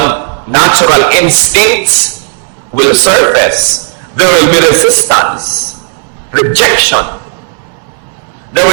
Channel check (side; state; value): left; silent; 68 dB below the other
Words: natural instincts will surface. There will be resistance, rejection. There